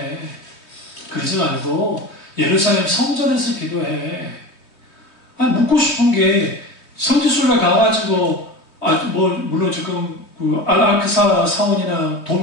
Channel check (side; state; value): right; late; 3.2 ms